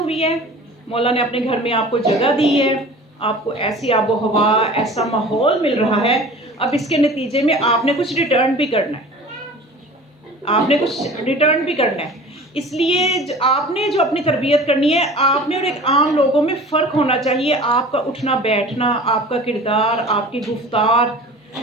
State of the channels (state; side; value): normal; both; correlation 0.41